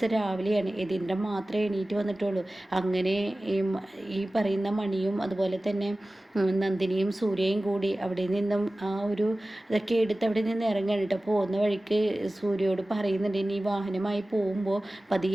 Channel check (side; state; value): both; normal; correlation 0.97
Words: രാവിലെയാണ്. യതീന്ദ്രൻ മാത്രമേ എണീറ്റ് വന്നിട്ടുള്ളൂ. അങ്ങനെ ഈ പറയുന്ന മണിയും അതുപോലെ തന്നെ നന്ദിനിയും സൂര്യയും കൂടി അവിടെ നിന്നും ആ ഒരു ഇതൊക്കെ എടുത്ത് അവിടെ നിന്ന് ഇറങ്ങാൻ കേട്ടോ. പോകുന്ന വഴിക്ക് സൂര്യയോട് പറയുന്നുണ്ട്, ഇനി വാഹനമായി പോകുമ്പോൾ